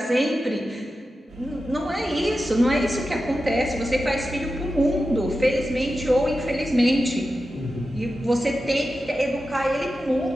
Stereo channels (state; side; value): normal; both; correlation 0.92